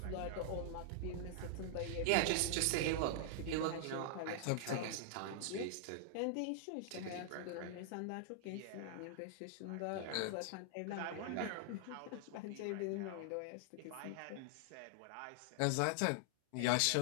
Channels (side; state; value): both; different; correlation -0.01